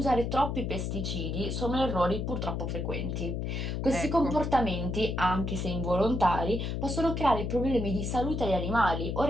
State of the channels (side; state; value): left; noise; hum, 2 dB below the sound